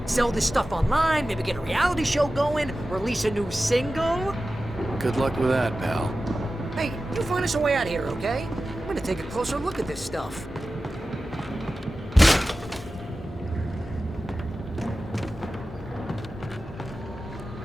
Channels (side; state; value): both; normal; correlation 0.94